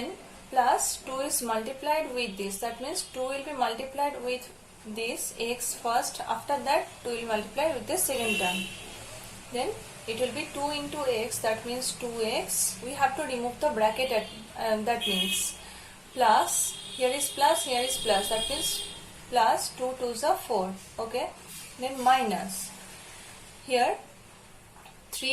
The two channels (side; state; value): both; identical; correlation 1.00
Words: plus 2 is multiplied with this, that means 2 will be multiplied with this x first, after that 2 will multiply with the second term, then it will be 2 into x, that means 2x. We have to remove the bracket at, that means plus, here is plus, here is plus, that means plus 2 2s are 4, okay, then minus, here